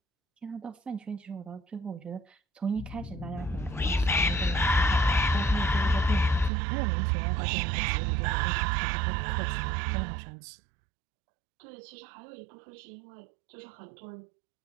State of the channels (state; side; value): drops out; left; at 6.5 s